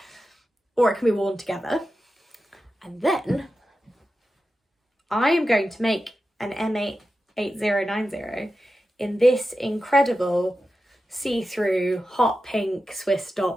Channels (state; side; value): normal; both; correlation 0.91